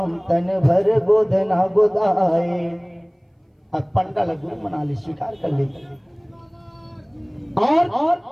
तन भर गोदना गोदाए। पंडाल गुरु बना ले, स्वीकार कर ले। और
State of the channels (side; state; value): both; identical; correlation 1.00